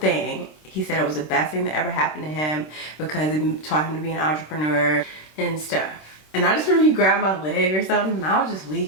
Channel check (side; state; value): right; late; 26 ms